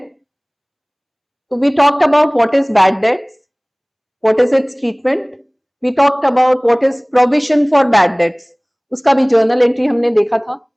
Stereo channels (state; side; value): identical; both; correlation 1.00